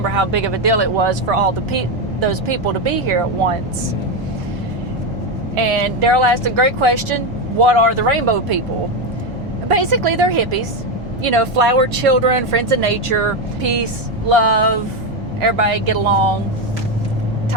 how big of a deal it was for all those people to be here at once. And Daryl asked a great question: what are the rainbow people? Basically, they're hippies. You know, flower children, friends of nature, peace, love, everybody get along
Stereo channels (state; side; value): normal; both; correlation 0.10